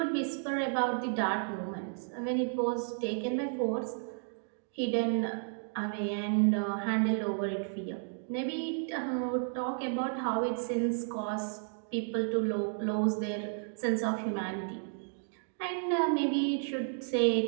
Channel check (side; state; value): left; silent; digital silence